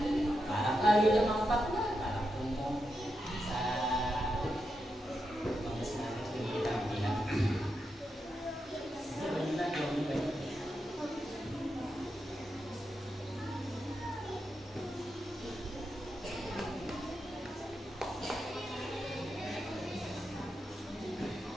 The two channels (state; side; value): normal; both; correlation 0.86